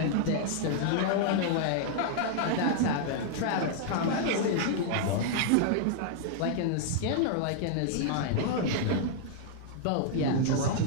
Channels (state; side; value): different; both; correlation -0.01